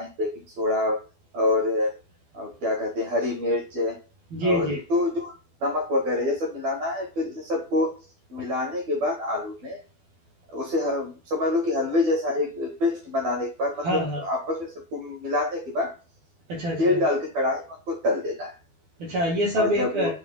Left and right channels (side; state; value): left; late; 12 ms